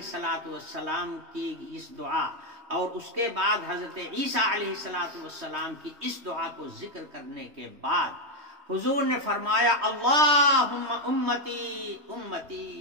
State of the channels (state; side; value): late; left; 3.1 ms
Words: السلام کی اس دعا اور اس کے بعد حضرت عیسیٰ علیہ السلام کی اس دعا کو ذکر کرنے کے بعد حضور نے فرمایا اللہم امتی امتی